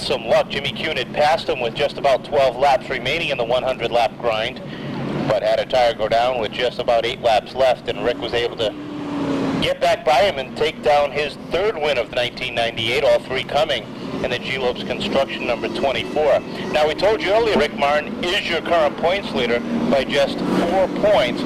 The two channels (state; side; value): identical; both; correlation 1.00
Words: some luck, Jimmy Kuhn had passed him with just about 12 laps remaining in the 100-lap grind, but had a tire go down with just about 8 laps left, and Rick was able to get back by him and take down his third win of 1998, all 3 coming in the G-Lopes Construction number 24. Now, we told you earlier, Rick Martin is your current points leader by just 4 points